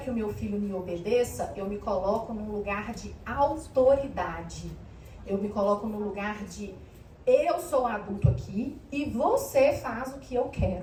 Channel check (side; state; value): both; identical; correlation 1.00